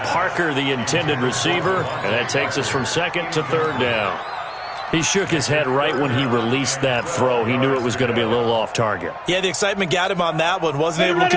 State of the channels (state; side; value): identical; both; correlation 1.00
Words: Parker, the intended receiver, and that takes us from 2nd to 3rd down. He shook his head right when he released that throw. He knew it was going to be a little off target. Yeah, the excitement got him on that one. Wasn't able to